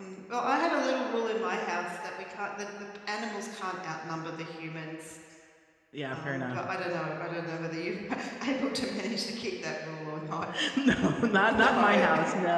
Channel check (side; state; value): both; identical; correlation 1.00